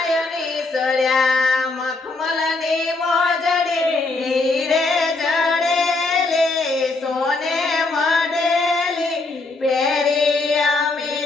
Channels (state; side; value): quieter; right; 3.4 dB